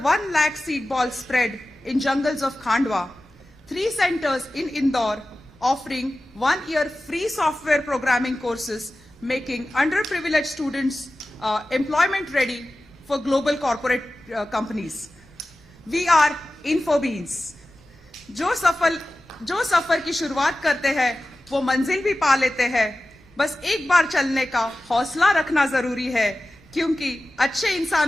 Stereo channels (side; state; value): both; normal; correlation 0.95